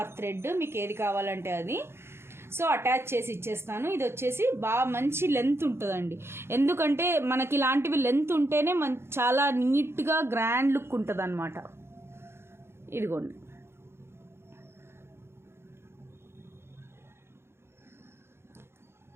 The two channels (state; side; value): late; left; 0.12 ms